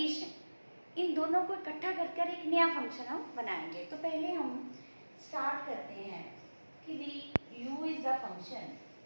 इन दोनों को इकट्ठा कर एक नया फंक्शन हम बनाएंगे। तो पहले हम स्टार्ट करते हैं कि भी u इज द फंक्शन,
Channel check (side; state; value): both; inverted; correlation -1.00